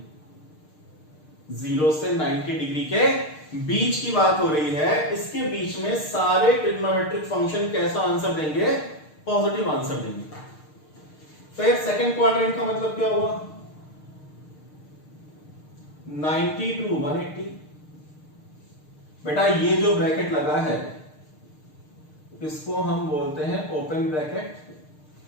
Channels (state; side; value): late; right; 6.6 ms